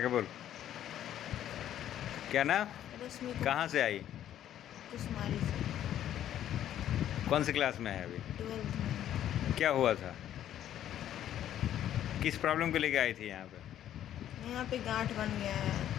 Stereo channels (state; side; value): quieter; right; 11.3 dB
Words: के बोल। क्या नाम? रश्मि कहाँ से आई? कुमारी से। कौन सी क्लास में है अभी? 12th में। क्या हुआ था? किस प्रॉब्लम को लेके आई थी यहाँ पे? यहाँ पे गांठ बन गया